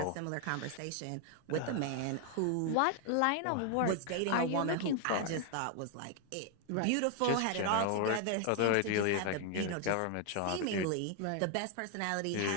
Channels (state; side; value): different; both; correlation 0.00